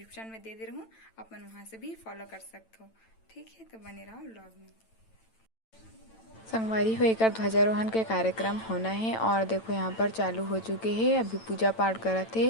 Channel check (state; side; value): late; right; 9.0 ms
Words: में दे रहा हूँ, आप मन वहाँ से भी फॉलो कर सकते हो। ठीक है, तो बने रहो ब्लॉग में। संगवारी हो एक ध्वजारोहण के कार्यक्रम होना है और देखो यहाँ पर चालू हो चुके हैं, अभी पूजा पाठ करत है।